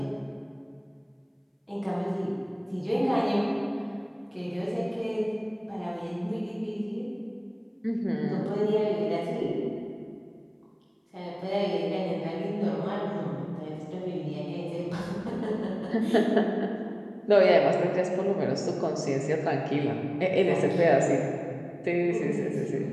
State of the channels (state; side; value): identical; both; correlation 1.00